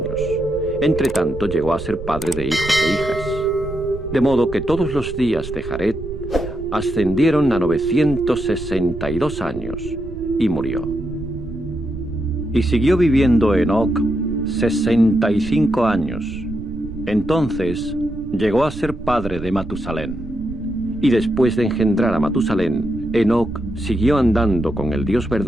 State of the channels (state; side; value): noise; right; rumble, 11 dB below the sound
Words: Entretanto llegó a ser padre de hijos e hijas. De modo que todos los días de Jared ascendieron a 962 años y murió. Y siguió viviendo Enoc 65 años. Entonces llegó a ser padre de Matusalén. Y después de engendrar a Matusalén, Enoc siguió andando con el Dios